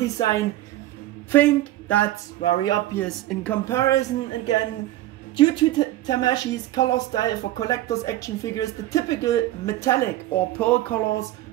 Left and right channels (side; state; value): left; quieter; 15.1 dB